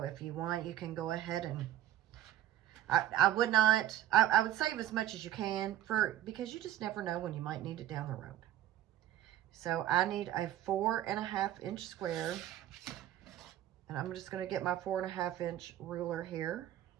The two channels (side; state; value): left; quieter; 12.5 dB